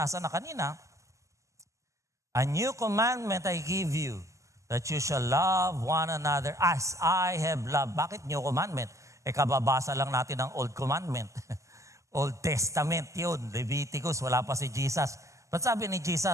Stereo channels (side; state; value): left; late; 0.15 ms